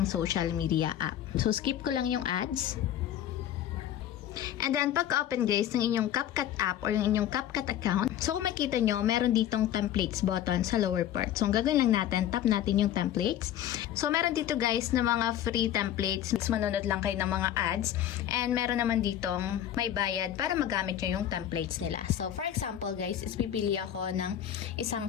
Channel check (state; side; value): quieter; right; 11.1 dB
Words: social media app. So skip ko lang yung ads. And then, pagka-open guys ng inyong CapCut app or yung inyong CapCut account, so kung makita nyo, meron ditong templates button sa lower part. So, ang gagawin lang natin, tap natin yung templates. So, meron dito guys na mga free templates. Manonood lang kayo ng mga ads. And meron naman ditong may bayad para magamit nyo yung templates nila. So, for example guys, is pipili ako ng isang